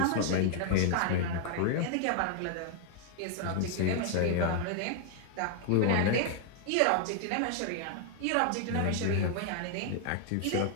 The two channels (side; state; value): both; different; correlation 0.00